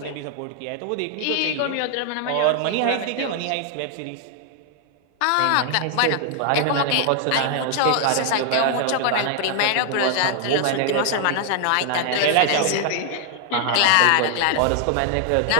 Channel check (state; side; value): different; both; correlation 0.00